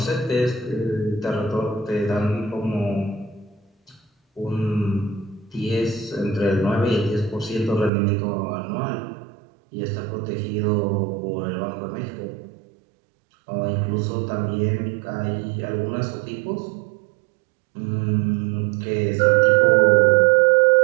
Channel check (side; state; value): left; drops out; at 7.9 s